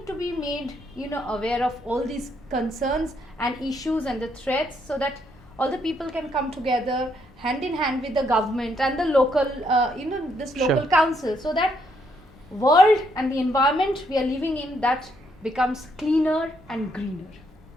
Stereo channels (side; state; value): both; normal; correlation 0.74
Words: to be made, aware of all these concerns and issues and the threats, so that all the people can come together hand in hand with the government and the local, this local Sure. council, so that world and the environment we are living in, that becomes cleaner and greener.